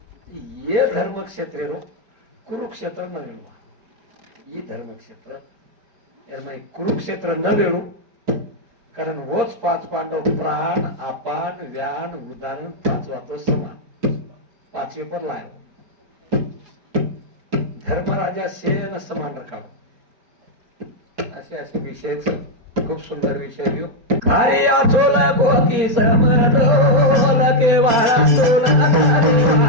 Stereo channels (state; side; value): late; left; 4.3 ms